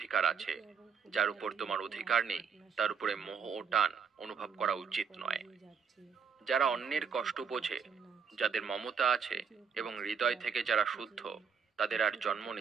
আছে। যার উপর তোমার অধিকার নেই, তার উপরে মোহ ও টান অনুভব করা উচিত নয়। যারা অন্যের কষ্ট বোঝে, যাদের মমতা আছে এবং হৃদয় থেকে যারা শুদ্ধ, তাদের আর জন্ম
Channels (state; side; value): quieter; left; 6.4 dB